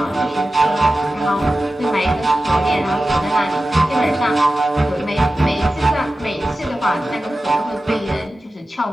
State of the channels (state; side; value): normal; both; correlation 0.94